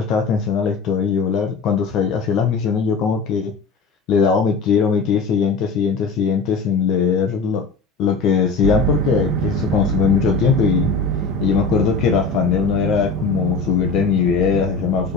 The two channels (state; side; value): quieter; right; 4.4 dB